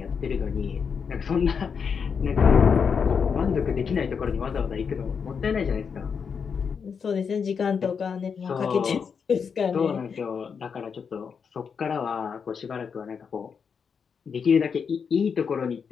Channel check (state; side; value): quieter; right; 6.3 dB